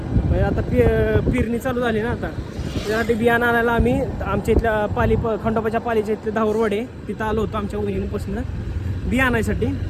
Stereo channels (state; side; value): identical; both; correlation 1.00